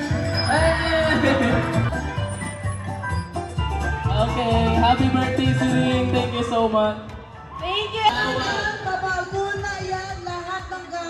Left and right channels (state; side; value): identical; both; correlation 1.00